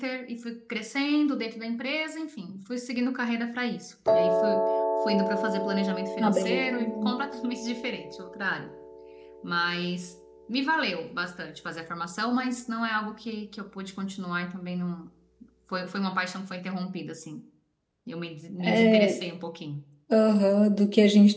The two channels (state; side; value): identical; both; correlation 1.00